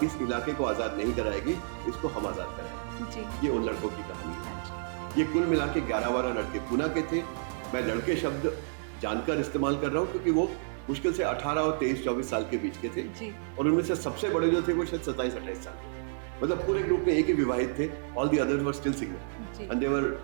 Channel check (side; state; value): left; silent; digital silence